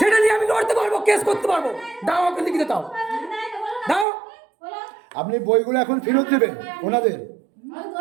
নিয়ে আমি লড়তে পারবো, কেস করতে পারবো। দাও আমাকে লিখিত দাও, দাও। আপনি বইগুলো এখন ফেরত দেবেন ওনাদের?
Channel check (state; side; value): drops out; left; at 4.0 s